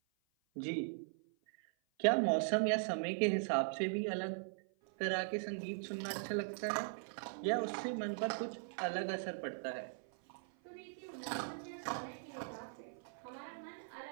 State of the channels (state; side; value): silent; left; 51 dB below the other